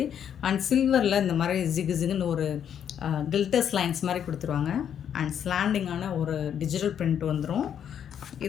அண்ட் சில்வரில் இந்த மாதிரி ஜிகு ஜிகுன்னு ஒரு கில்டர்ஸ் லைன்ஸ் மாதிரி கொடுத்துருவாங்க. அண்ட் ஸ்லாண்டிங்கான ஒரு டிஜிட்டல் பிரிண்ட் வந்துடும்.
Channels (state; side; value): quieter; right; 8.9 dB